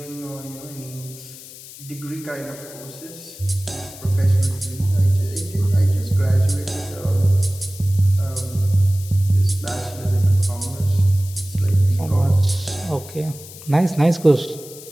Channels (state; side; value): noise; left; hiss, 17 dB below the sound